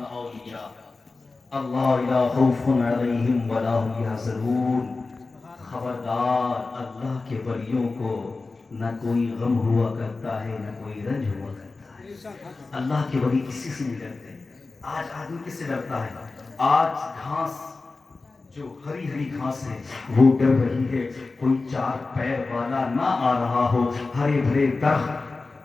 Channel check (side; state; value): right; quieter; 3.7 dB